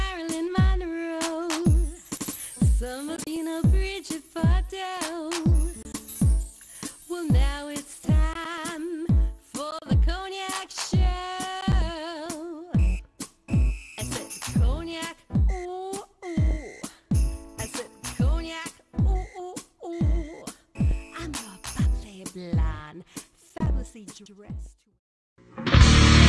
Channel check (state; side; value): identical; both; correlation 1.00